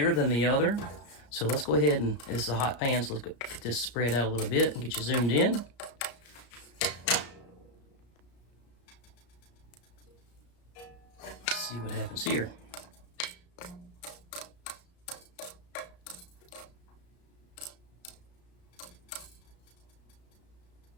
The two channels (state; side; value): late; right; 33 ms